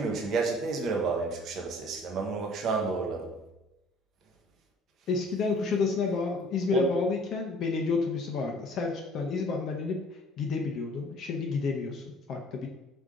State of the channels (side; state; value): both; normal; correlation 0.53